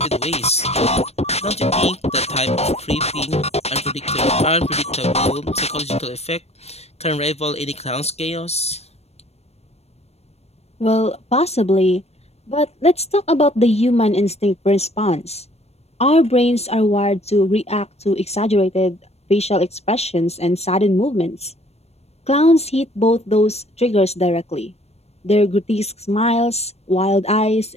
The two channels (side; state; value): right; late; 0.31 ms